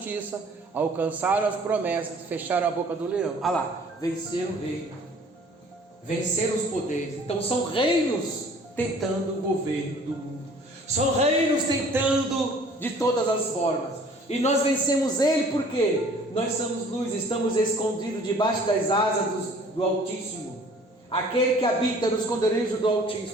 alcançaram as promessas, fecharam a boca do leão. Lá, venceram o reino, venceram os poderes. Então são reinos tentando o governo do mundo, são reinos tentando de todas as formas, e nós vencemos ele porque nós somos luz, estamos escondidos debaixo das asas do Altíssimo, aquele que habita no esconderijo do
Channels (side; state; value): both; normal; correlation 0.52